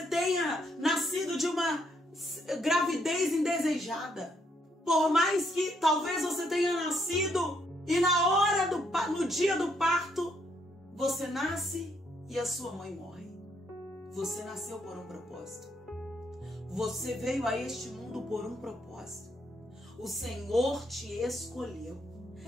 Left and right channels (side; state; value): both; normal; correlation 0.73